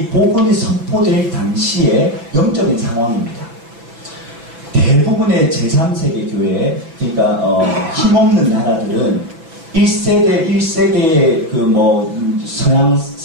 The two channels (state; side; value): late; left; 6.1 ms